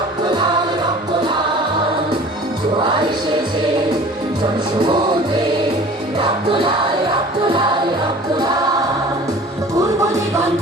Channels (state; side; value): normal; both; correlation 0.45